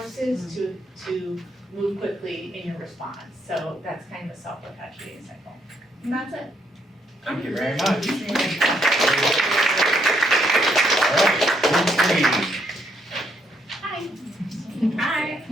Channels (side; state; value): both; normal; correlation 0.73